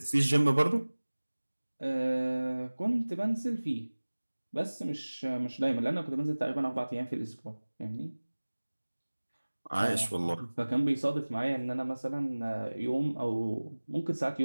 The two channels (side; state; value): both; inverted; correlation -1.00